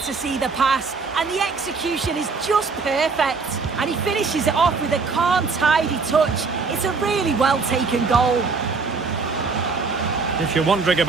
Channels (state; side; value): quieter; left; 4.6 dB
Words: see the pass, and the execution is just perfect. And he finishes it off with a calm, tidy touch. It's a really well-taken goal. If you're wondering